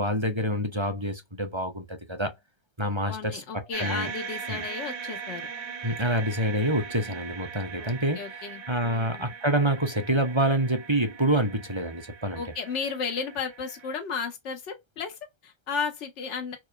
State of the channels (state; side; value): late; left; 1.3 ms